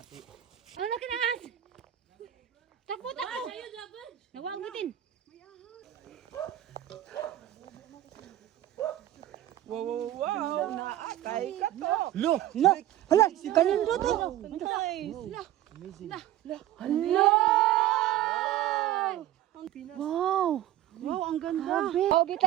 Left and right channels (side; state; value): left; quieter; 13.3 dB